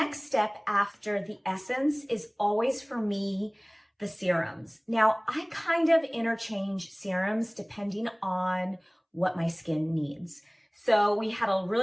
step after the essence is always for me, the serums. Now, I kind of interchange serums depending on what my skin needs. So we had a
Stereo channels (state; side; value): identical; both; correlation 1.00